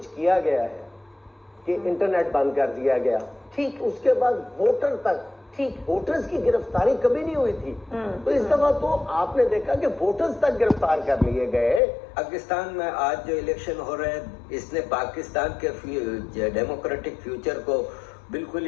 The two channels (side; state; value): right; drops out; at 11.8 s